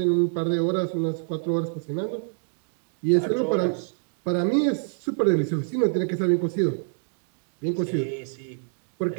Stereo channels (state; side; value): silent; left; digital silence